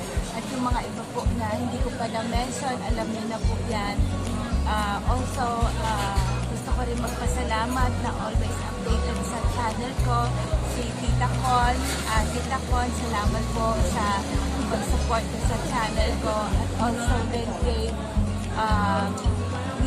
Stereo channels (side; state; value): both; identical; correlation 1.00